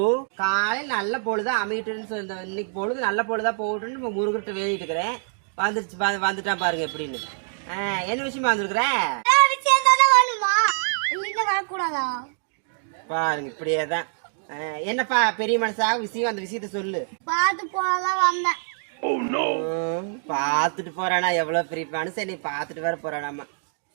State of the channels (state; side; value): silent; left; 62 dB below the other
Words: காலையில் நல்ல பொழுதா அமைட்டுன்னு சொல்ல, இன்னைக்கு பொழுது நல்ல பொழுதா போகட்டுன்னு நம்ம முருகிட்ட வேண்டிட்டு இருக்கிறேன். வந்துருச்சு, வந்துட்டான் பாருங்க எப்படின்னு. என்ன விஷயமா வந்துருக்குற? வரக்கூடாதா பாருங்க, இப்படியேதான். என்னப்பா பெரிய மனசா விஷயம், அந்த விஷயத்த சொல்லு. பார்த்து போதான் வந்தேன். பாத்துட்டு போறானா? எவ்வளவு பெரிய மனுஷன், நீ பாத்துட்டு வேற போறானாமா.